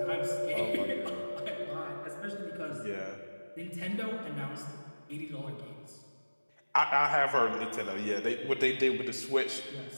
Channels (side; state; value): both; inverted; correlation -1.00